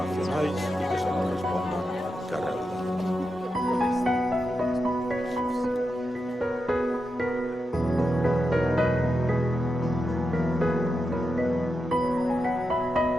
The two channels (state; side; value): normal; both; correlation 0.88